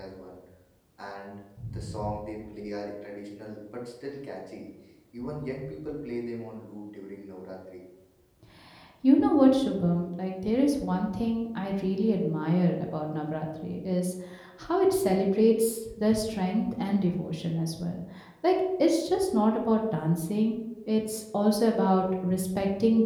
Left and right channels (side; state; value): both; identical; correlation 1.00